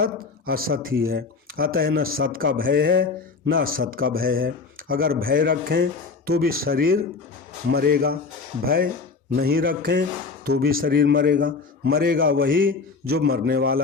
असत ही है, अतः न सत का भय है न असत का भय है। अगर भय रखें तो भी शरीर मरेगा, भय नहीं रखें तो भी शरीर मरेगा। मरेगा वही जो मरने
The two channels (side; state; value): right; quieter; 4.6 dB